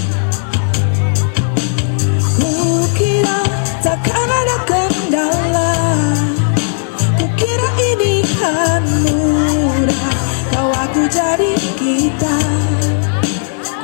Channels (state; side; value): silent; right; digital silence